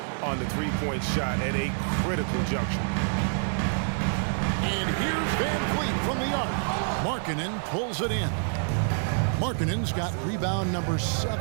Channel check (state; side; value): silent; left; 60 dB below the other